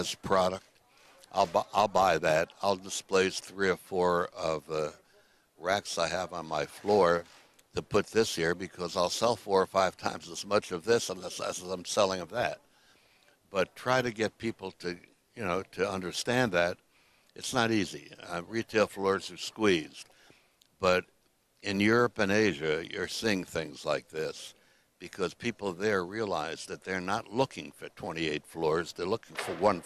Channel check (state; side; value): identical; both; correlation 1.00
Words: product. I'll buy that. I'll displace 3 or 4 of the racks I have on my floor to put this here because I'll sell 4 or 5 times as much of this as I'm selling of that. But try to get people to understand that it's not easy. Retail floors are squeezed. But in Europe and Asia, you're seeing things like this because people there realize that they're not looking for 28 floors. They're looking for 1